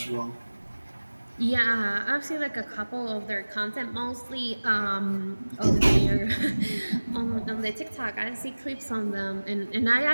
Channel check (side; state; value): both; inverted; correlation -1.00